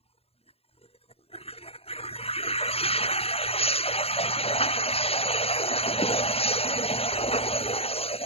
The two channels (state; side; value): late; right; 0.29 ms